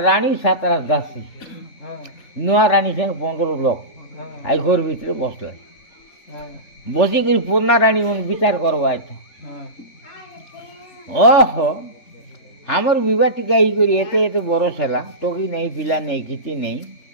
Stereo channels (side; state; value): right; late; 3.4 ms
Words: রানী সাতরা দাসী নূয়া রানী সঙ্গে 15 লোক আই ঘর ভিতরে বসলে বসি করে পূর্ণা রানী মন বিচার করবো তো ওহো আমার বিবাহ টিকা ই করি এতে এতে বড় সেলা টকি নেই পিলা নেই কিছু নেই